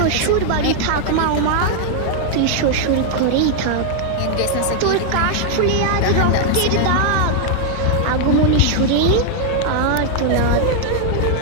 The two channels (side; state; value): both; different; correlation 0.00